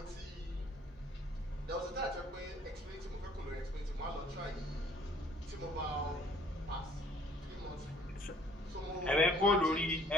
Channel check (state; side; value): normal; both; correlation 0.57